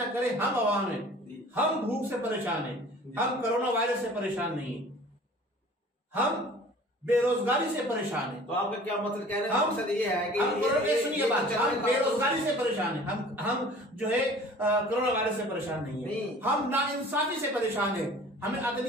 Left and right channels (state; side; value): normal; both; correlation 0.46